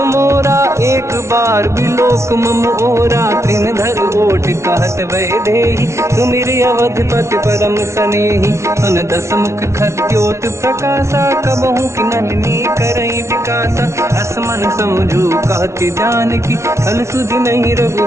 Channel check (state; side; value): late; left; 0.13 ms